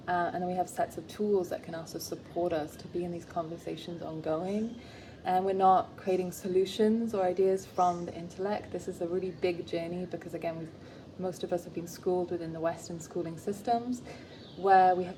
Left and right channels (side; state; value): both; identical; correlation 1.00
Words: and then we have sets of tools that can also support us to be in these conversations ongoing. And we're not creating solutions or ideas from the intellect. This is a really big journey because, again, most of us have been schooled within the Western schooling systems, where we have